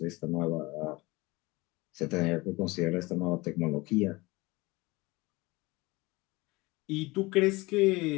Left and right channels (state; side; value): quieter; right; 22.6 dB